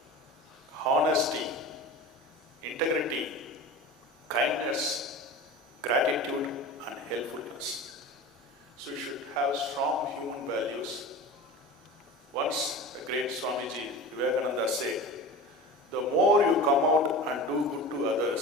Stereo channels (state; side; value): normal; both; correlation 0.33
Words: honesty, integrity, kindness, gratitude, and helpfulness. So you should have strong human values. Once a great Swamiji Vivekananda said, the more you come out and do good to